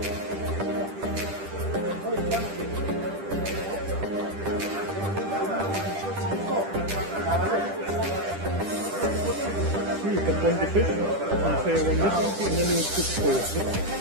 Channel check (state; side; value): late; left; 10 ms